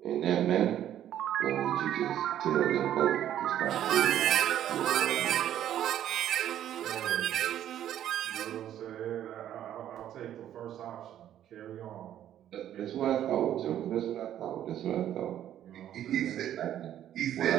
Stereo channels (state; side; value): quieter; left; 11.2 dB